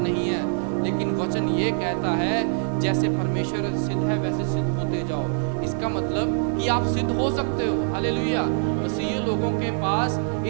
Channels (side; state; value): left; silent; 59 dB below the other